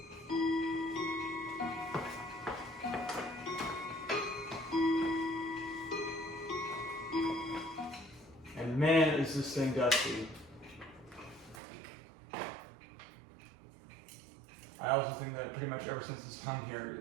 And man, is this thing dusty. I also think that pretty much ever since it's hung here,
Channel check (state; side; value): drops out; left; at 11.6 s